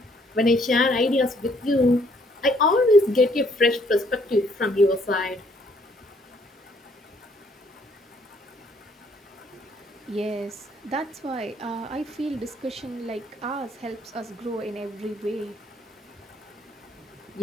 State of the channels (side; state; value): both; normal; correlation 0.66